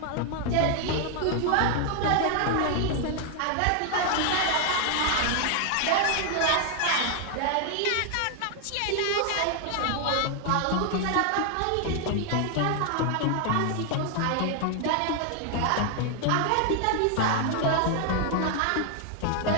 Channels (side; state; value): both; different; correlation 0.00